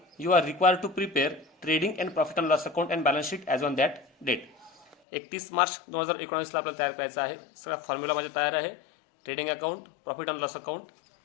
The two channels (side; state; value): right; drops out; at 5.0 s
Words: you are required to prepare trading and profit and loss account and balance sheet as on that date. 31 March 2019ला आपल्याला तयार करायचं आहे. सगळा फॉर्म्युला माझ्या तयार आहे. Trading account, profit and loss account